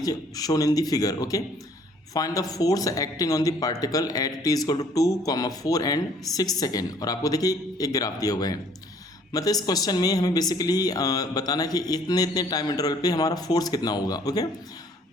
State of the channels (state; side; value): normal; both; correlation 0.59